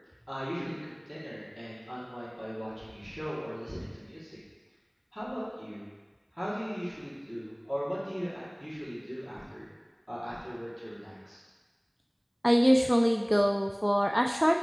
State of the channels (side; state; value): both; identical; correlation 1.00